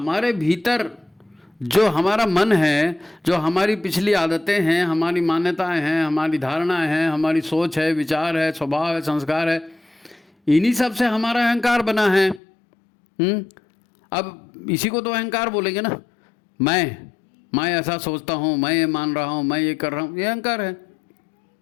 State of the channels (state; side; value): drops out; right; at 12.4 s